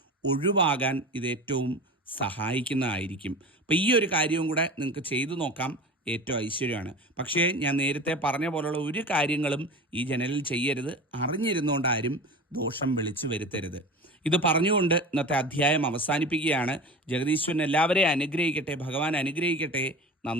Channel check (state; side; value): normal; both; correlation 0.33